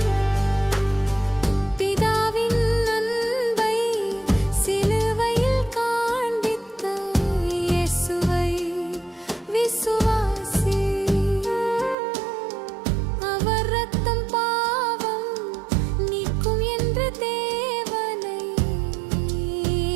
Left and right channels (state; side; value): drops out; left; at 12.0 s